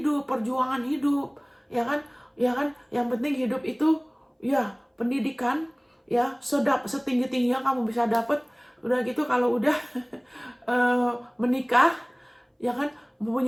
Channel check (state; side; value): identical; both; correlation 1.00